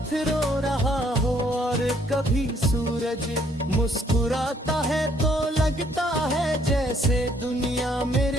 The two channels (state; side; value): normal; both; correlation 0.66